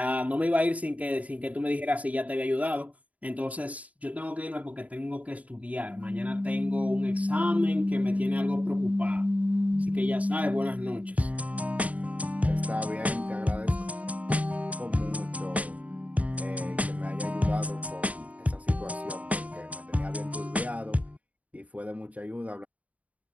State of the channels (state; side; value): late; left; 0.070 ms